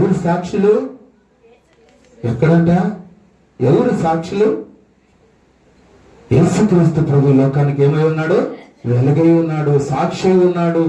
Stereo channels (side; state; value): both; identical; correlation 1.00